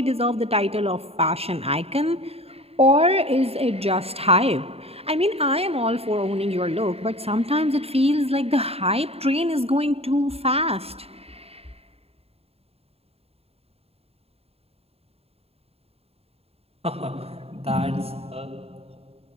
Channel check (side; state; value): left; late; 0.29 ms